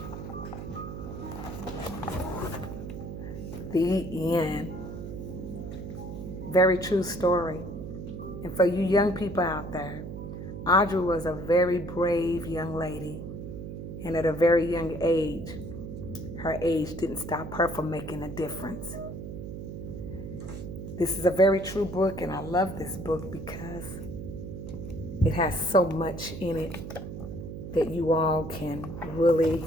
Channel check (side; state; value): right; noise; hum, 8 dB below the sound